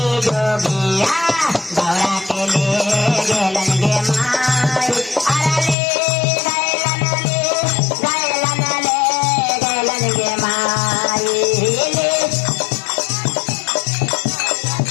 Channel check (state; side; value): drops out; right; at 5.8 s